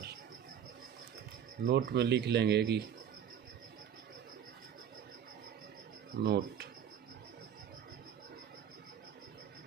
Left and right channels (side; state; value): left; quieter; 9.0 dB